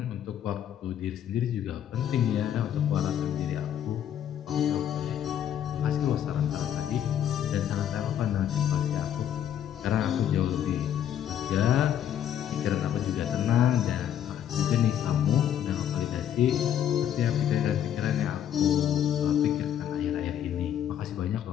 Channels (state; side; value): quieter; right; 10.0 dB